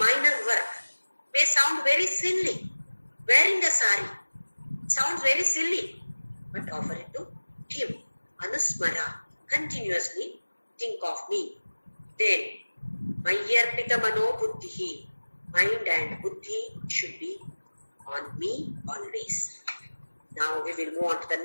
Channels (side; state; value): both; inverted; correlation -1.00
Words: work. May sound very silly. Wearing a sari sounds very silly. But offer it to him. Anusmara. Continuously think of me. Then, Mayarpita Mano Buddhihi. Mind and Buddhi should be on me always. Now we will move on to the